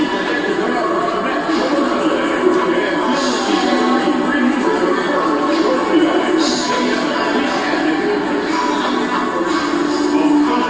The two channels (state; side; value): noise; right; rumble, 24 dB below the sound